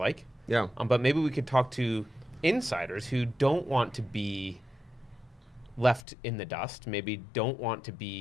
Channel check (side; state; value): right; drops out; at 6.1 s